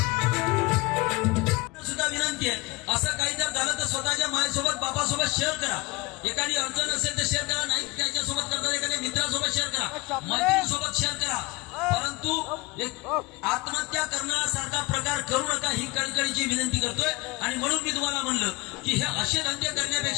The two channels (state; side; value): quieter; right; 23.8 dB